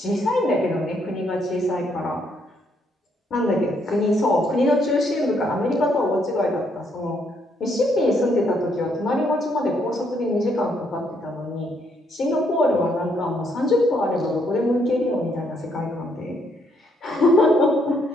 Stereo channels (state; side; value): normal; both; correlation 0.72